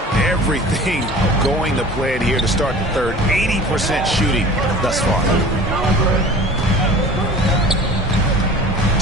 Everything going to plan here to start the third. 80% shooting thus far.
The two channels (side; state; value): both; normal; correlation 0.42